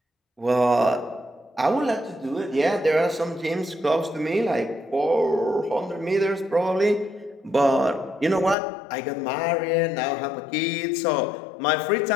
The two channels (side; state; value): right; drops out; at 8.6 s